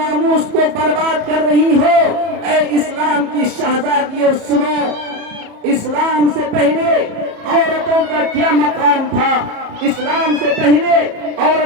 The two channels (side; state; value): left; late; 34 ms